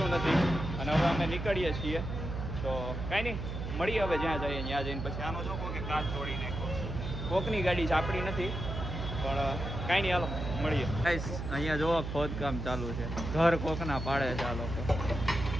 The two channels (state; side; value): noise; right; hum, 5 dB below the sound